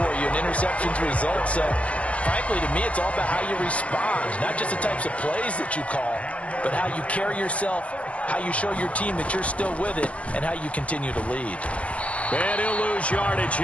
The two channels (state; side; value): late; right; 0.064 ms